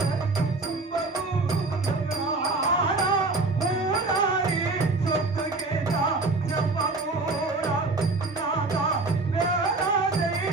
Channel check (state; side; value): quieter; left; 3.4 dB